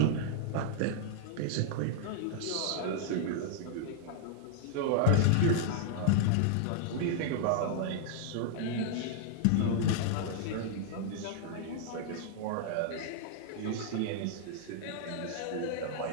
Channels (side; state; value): both; different; correlation -0.01